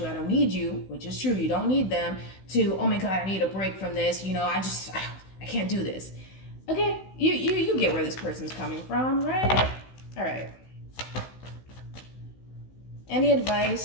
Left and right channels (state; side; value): late; right; 16 ms